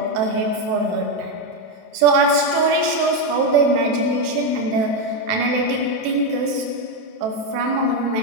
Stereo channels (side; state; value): left; late; 27 ms